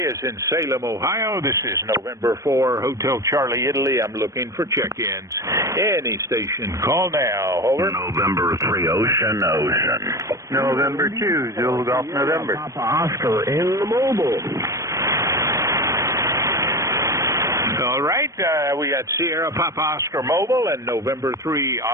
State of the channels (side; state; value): left; late; 0.16 ms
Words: is in Salem, Ohio. This is November 4, Hotel Charlie, Italy. I'm looking for check-ins. Any station, call now. Over. November 3, Ocean. November 2, Zulu Golf November. Papa Oscar in the mobile. All right, we got Sierra Papa Oscar Mobile and November 3